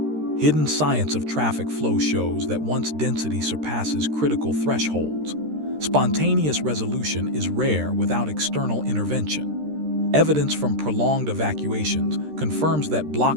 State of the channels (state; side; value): late; left; 13 ms